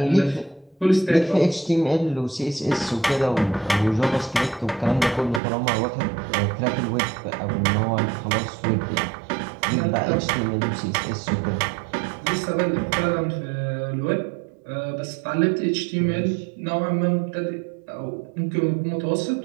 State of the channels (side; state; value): left; drops out; at 5.4 s